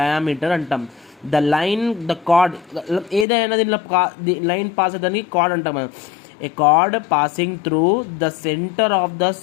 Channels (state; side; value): drops out; right; at 3.2 s